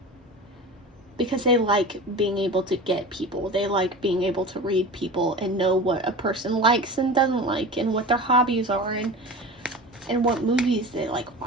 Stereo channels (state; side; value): normal; both; correlation 0.33